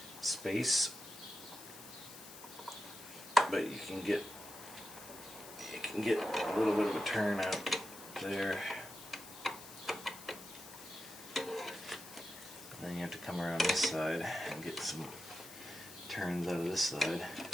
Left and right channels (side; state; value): left; noise; hiss, 15 dB below the sound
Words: space, but you can get a little bit of a turn out there. And then you have to come around this side and get some turns out of this side.